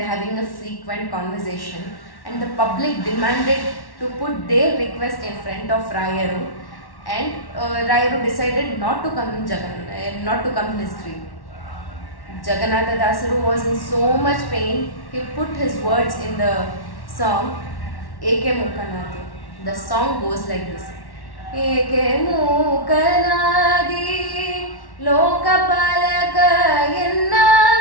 are having a frequent conversation, and the public demanded to put their request in front of Rayaru, and Rayaru decided not to come in his dream. Jagannatha Dasaru was in so much pain, he put his words in the song Eke Mukanadi. The song goes like this. Eke Mukanadi Lokapalaka Yenna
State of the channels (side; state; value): right; late; 1.1 ms